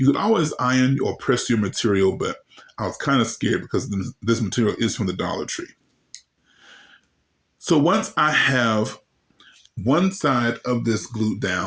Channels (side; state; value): both; identical; correlation 1.00